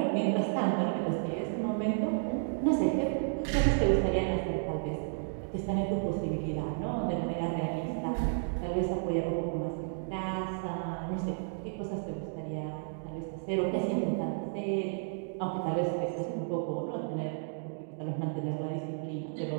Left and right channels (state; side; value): silent; left; digital silence